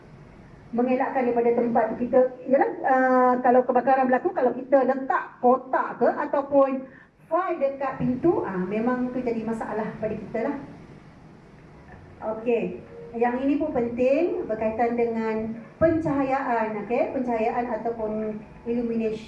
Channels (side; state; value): both; identical; correlation 1.00